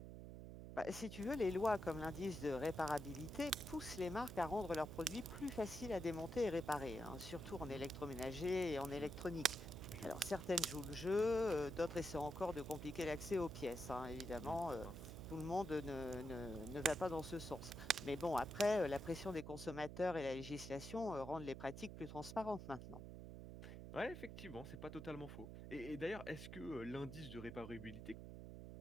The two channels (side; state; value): right; noise; hum, 10 dB below the sound